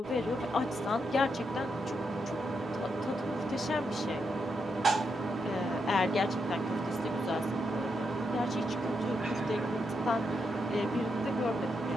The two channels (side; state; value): both; normal; correlation 0.82